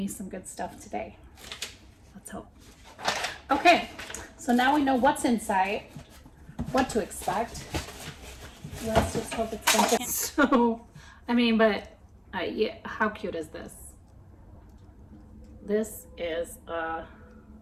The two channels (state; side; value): identical; both; correlation 1.00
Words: some good stuff today. Let's hope. Okay, so now we know what's inside, what to expect. Let's just hope it's something. So, I mean, but yeah, how cute is this? This is a